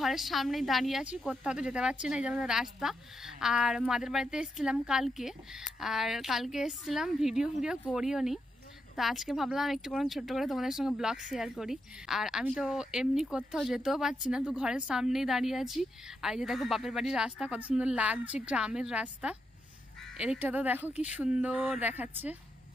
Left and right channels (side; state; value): both; normal; correlation 0.83